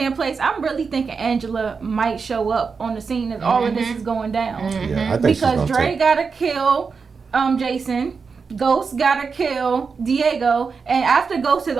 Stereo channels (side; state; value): left; quieter; 5.2 dB